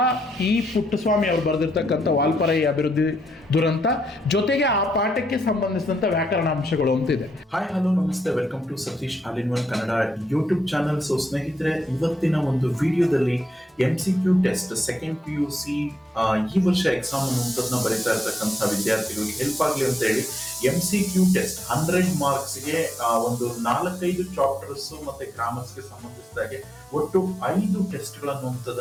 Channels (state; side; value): normal; both; correlation 0.82